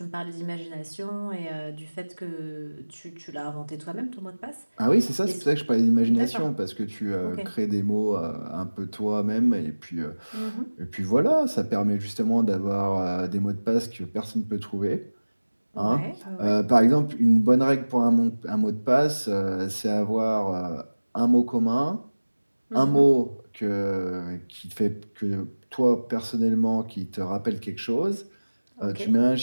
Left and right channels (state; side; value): inverted; both; correlation -1.00